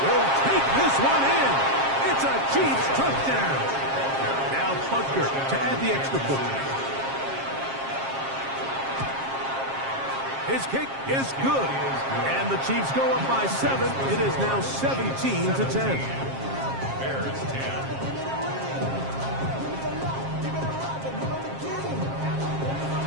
will take this one in. It's a Chiefs touchdown. Now Butker to add the extra point. His kick is good. And the Chiefs go up by 7. It is now 17-10. Bears 10.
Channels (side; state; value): left; late; 7.5 ms